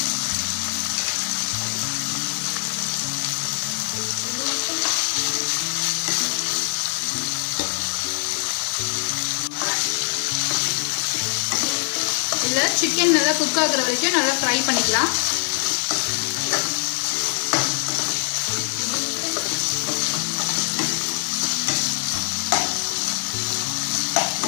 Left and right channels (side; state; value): right; silent; digital silence